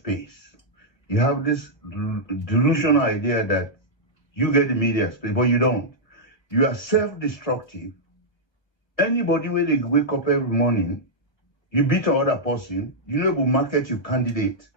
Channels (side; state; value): right; late; 1.1 ms